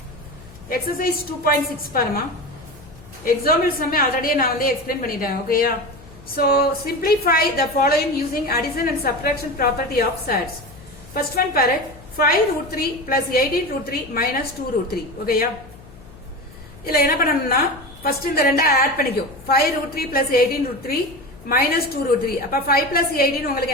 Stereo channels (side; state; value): left; noise; hum, 21 dB below the sound